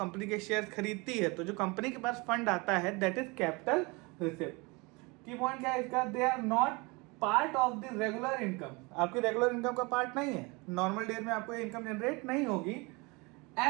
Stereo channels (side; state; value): left; quieter; 26.8 dB